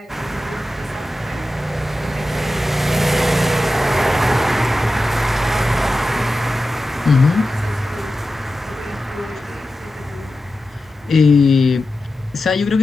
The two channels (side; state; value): both; normal; correlation 0.92